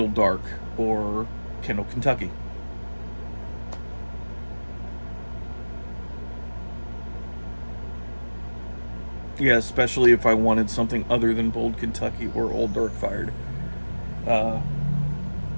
Dark or Kendall Kentucky. Yeah, especially if I wanted something other than Bold Kentucky or Old Dark Fired. Uh,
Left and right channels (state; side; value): inverted; both; correlation -1.00